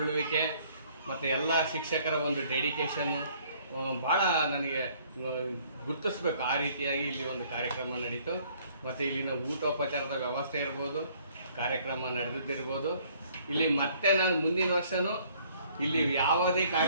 ಮತ್ತು ಎಲ್ಲ ಶಿಕ್ಷಕರ ಒಂದು ಡೆಡಿಕೇಶನ್ ಭಾಳ ನನಗೆ ಗುರುತಿಸ್ಬೇಕು. ಆ ರೀತಿಯಾಗಿ ಇಲ್ಲಿ ಒಂದು ಕಾರ್ಯಕ್ರಮ ನಡೀತು. ಮತ್ತು ಇಲ್ಲಿನ ಊಟೋಪಚಾರದ ವ್ಯವಸ್ಥೆ ಇರ್ಬೋದು, ಕಾರ್ಯಕ್ರಮ ನಡೆದಿದ್ದಿರ್ಬೋದು. ಇಲ್ಲಿ ಮತ್ತೆ ನಾನು ಮುಂದಿನ ವರ್ಷವೂ ಇಲ್ಲಿ ಯಾವುದೇ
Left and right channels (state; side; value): inverted; both; correlation -0.60